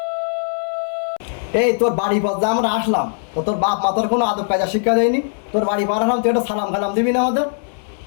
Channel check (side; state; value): right; silent; 66 dB below the other